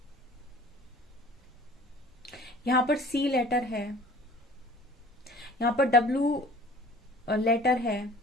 यहाँ पर सी लेटर है, यहाँ पर डब्ल्यू लेटर है,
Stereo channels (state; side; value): normal; both; correlation 0.47